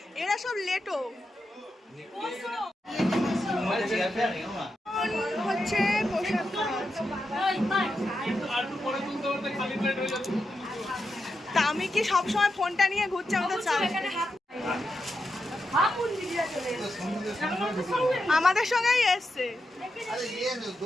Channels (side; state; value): both; normal; correlation 0.87